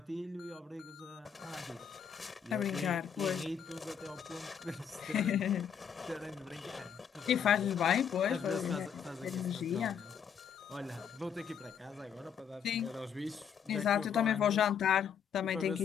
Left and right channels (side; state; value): right; quieter; 7.7 dB